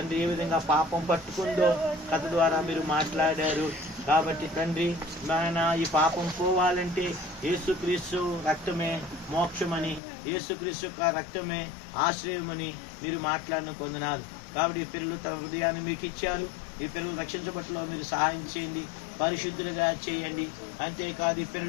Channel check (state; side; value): drops out; right; at 10.0 s